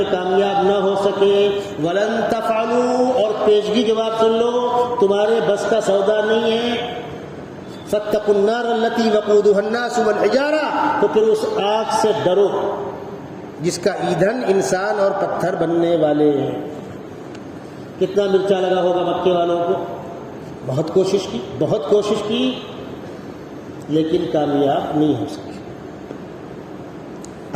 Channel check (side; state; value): both; identical; correlation 1.00